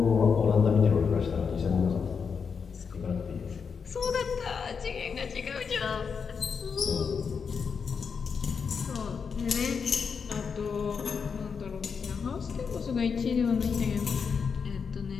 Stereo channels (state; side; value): quieter; right; 6.0 dB